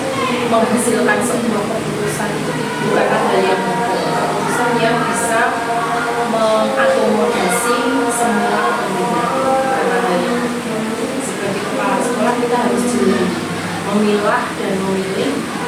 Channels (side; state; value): both; identical; correlation 1.00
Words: menghasilkan sebuah keputusan itu bukanlah hal yang mudah. Keputusan yang bisa mengakomodasi semua kepentingan. Karena dari sebagai kepala sekolah kita harus jeli memilah dan memilih